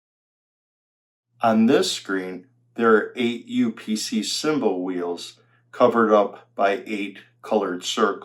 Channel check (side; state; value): both; identical; correlation 1.00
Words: On this screen, there are 8 UPC symbol wheels covered up by 8 colored